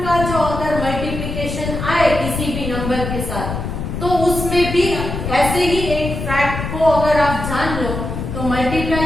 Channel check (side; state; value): left; noise; rumble, 5 dB below the sound